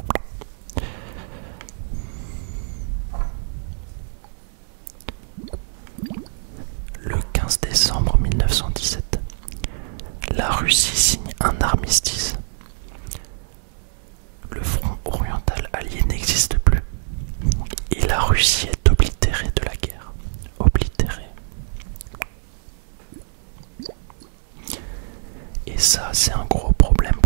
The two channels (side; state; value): left; silent; 62 dB below the other